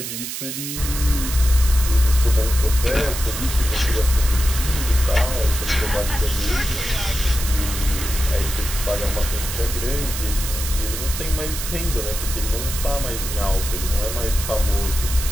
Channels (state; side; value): noise; right; hiss, 6 dB below the sound